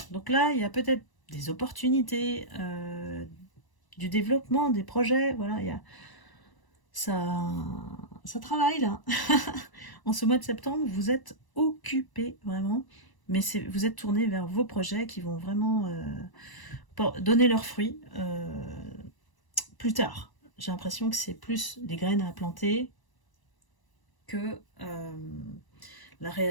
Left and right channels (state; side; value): late; right; 1.0 ms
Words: Donc là, il y a peut-être des opportunités, du développement, des projets. Voilà, il y a ça travaille là. En ce mois de septembre, vous êtes occupé vraiment, mais vous êtes tourné vers vos projets qui vont vraiment donner leurs fruits plus tard. J'ai l'impression que c'est plus des graines à planter que la